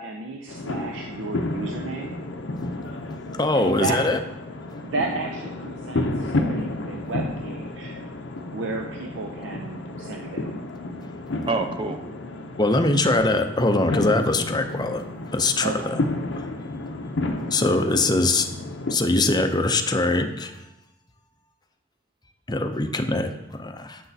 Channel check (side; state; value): both; normal; correlation 0.47